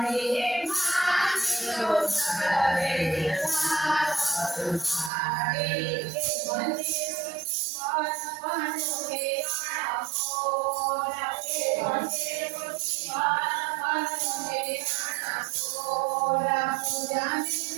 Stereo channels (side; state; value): left; drops out; at 5.1 s